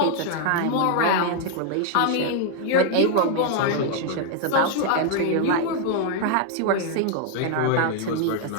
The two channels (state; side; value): different; both; correlation 0.01